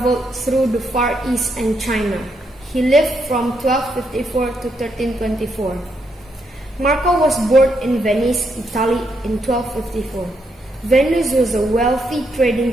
through the Far East and China. He lived from 1254 to 1324. Marco was born in Venice, Italy in 1254. Venice was a wealthy trading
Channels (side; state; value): both; normal; correlation 0.78